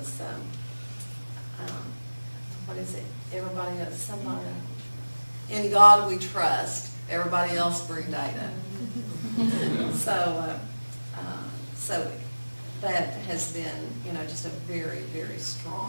what is it? Everybody else, somebody, in God we trust, everybody else bring data. So that has been, just a very, very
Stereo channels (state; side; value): inverted; both; correlation -1.00